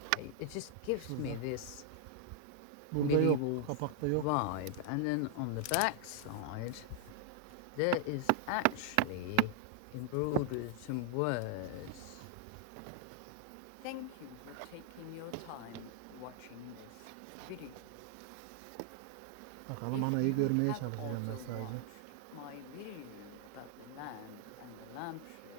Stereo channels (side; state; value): both; different; correlation 0.00